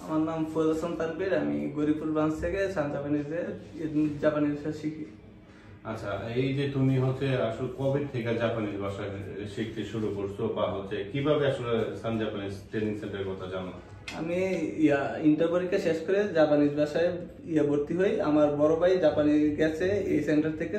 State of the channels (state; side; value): identical; both; correlation 1.00